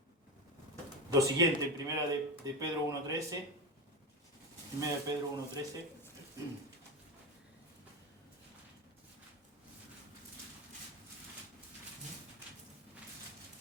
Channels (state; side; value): normal; both; correlation 0.17